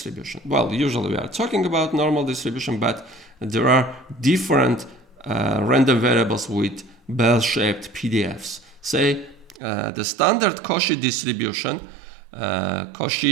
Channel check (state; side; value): drops out; left; at 9.6 s